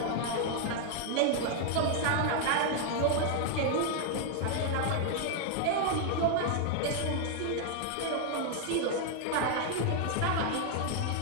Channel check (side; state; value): both; different; correlation 0.00